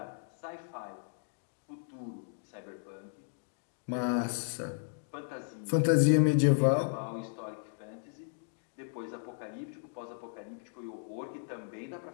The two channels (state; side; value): silent; right; digital silence